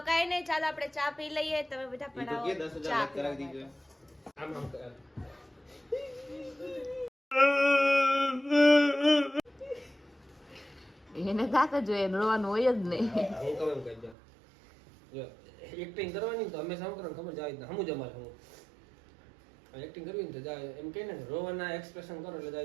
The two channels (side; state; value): left; drops out; at 14.2 s